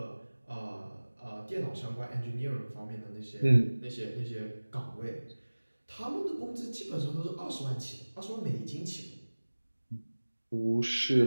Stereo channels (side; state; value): both; inverted; correlation -1.00